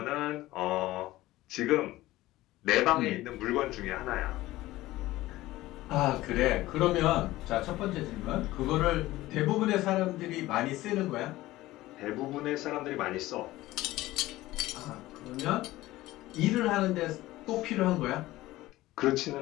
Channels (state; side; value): quieter; right; 17.2 dB